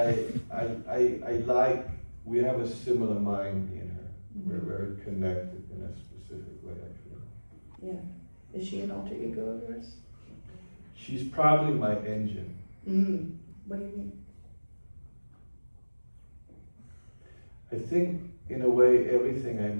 like, we have a similar mind in her. We're very connected in a specific way, I feel. Yeah. Is she an alter ego of yours? She's probably my engine. What do you mean? I think, in a way, everything I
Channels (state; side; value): inverted; both; correlation -1.00